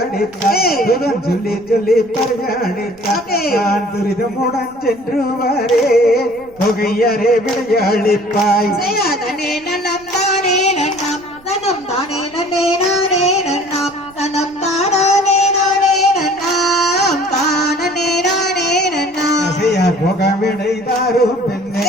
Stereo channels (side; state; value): right; noise; rumble, 27 dB below the sound